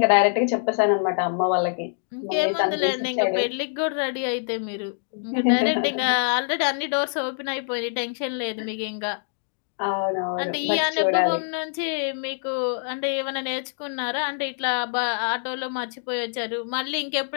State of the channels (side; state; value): right; silent; digital silence